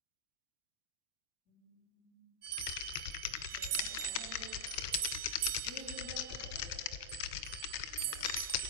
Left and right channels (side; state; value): left; late; 1.8 ms